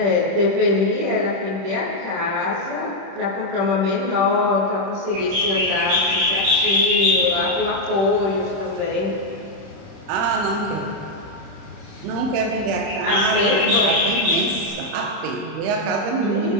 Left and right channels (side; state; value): left; late; 31 ms